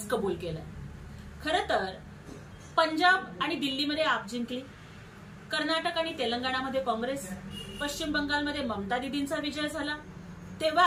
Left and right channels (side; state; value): both; identical; correlation 1.00